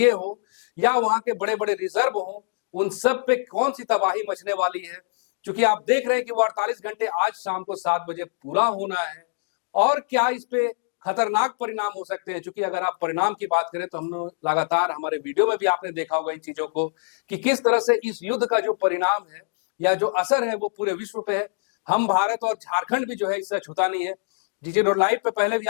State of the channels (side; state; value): right; silent; digital silence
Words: हो, या वहां के बड़े बड़े रिजर्व हो, उन सब पे कौन सी तबाही मचने वाली है? क्योंकि आप देख रहे हैं कि वो 48 घंटे आज शाम को 7 बजे पूरा होना है। और क्या इस पे खतरनाक परिणाम हो सकते हैं? क्योंकि अगर आप परिणाम की बात करें तो हम लगातार हमारे वीडियो में भी आपने देखा होगा इन चीजों को कि किस तरह से इस युद्ध का जो परिणाम है या जो असर है वो पूरे विश्व पे है। हम भारत और झारखंड भी जो है इससे छूता नहीं है। जीटी रोड लाइव पे पहले भी